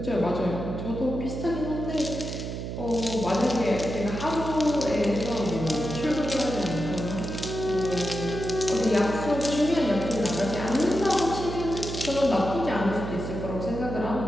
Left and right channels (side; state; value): right; noise; hum, 6 dB below the sound